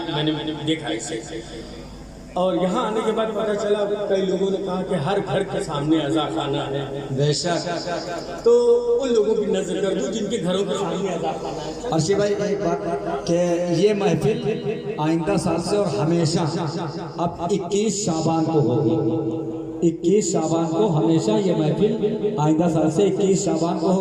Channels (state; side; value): identical; both; correlation 1.00